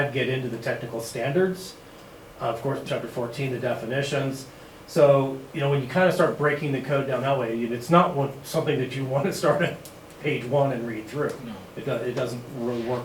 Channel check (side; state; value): both; identical; correlation 1.00